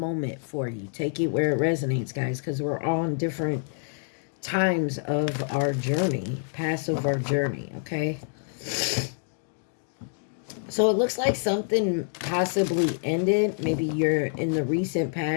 for you. Take it where it resonates, guys, because we're all in different times of our journey, past of our journey, okay? So it looks like something possibly ended. Maybe you're in the recent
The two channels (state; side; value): silent; right; digital silence